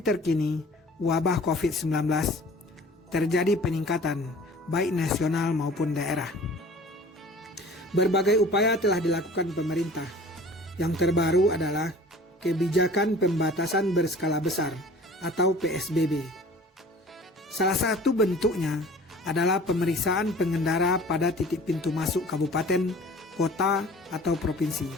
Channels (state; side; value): normal; both; correlation 0.46